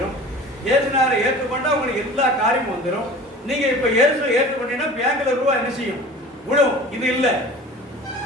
இயேசுநாரை ஏற்றுக்கொண்டா உங்களுக்கு எல்லா காரியமும் வந்துடும். நீங்க இப்ப இயேசுவை ஏற்றுக்கொண்டீங்கன்னா பேங்க்ல ரூபா என்ன செய்யும்? விடும். இது இல்லை.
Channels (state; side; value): normal; both; correlation 0.40